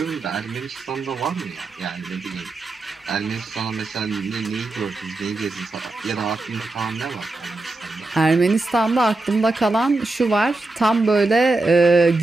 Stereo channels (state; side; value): quieter; left; 3.1 dB